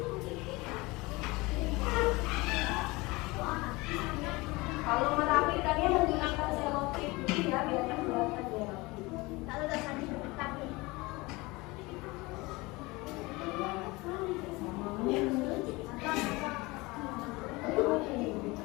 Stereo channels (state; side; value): quieter; right; 23.1 dB